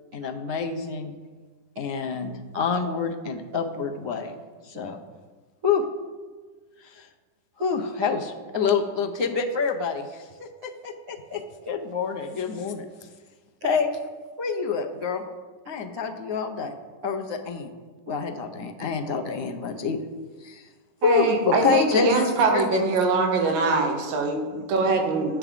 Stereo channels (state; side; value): late; left; 9.7 ms